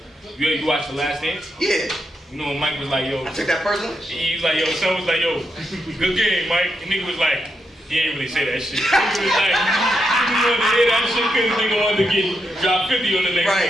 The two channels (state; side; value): normal; both; correlation 0.83